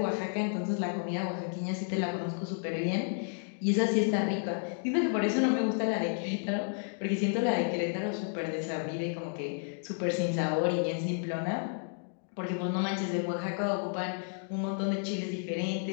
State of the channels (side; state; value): right; silent; 57 dB below the other